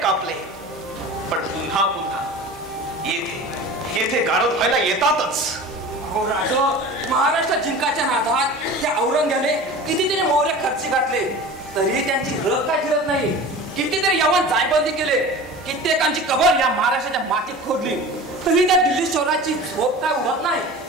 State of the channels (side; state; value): both; normal; correlation 0.37